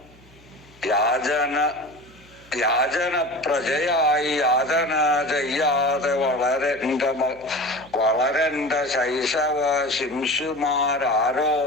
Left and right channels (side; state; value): left; noise; hum, 28 dB below the sound